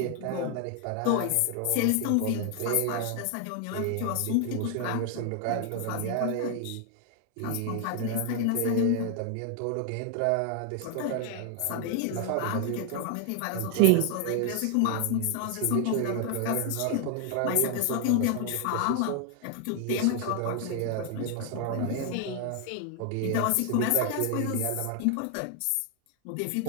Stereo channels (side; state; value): both; different; correlation 0.00